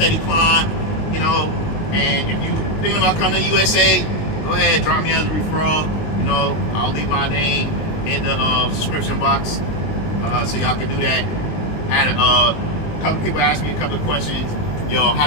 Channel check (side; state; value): right; late; 20 ms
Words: climb, you know. And if you're thinking about coming to USA, go ahead, drop me as a referral. You know, I'll leave my name in the subscription box, so y'all can do that. Had a couple people asked me a couple of questions. Yo,